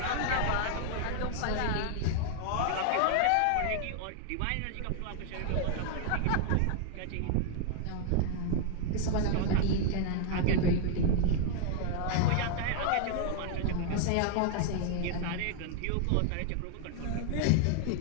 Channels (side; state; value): both; different; correlation 0.00